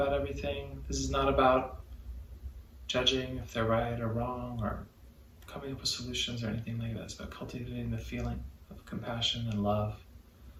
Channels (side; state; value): both; identical; correlation 1.00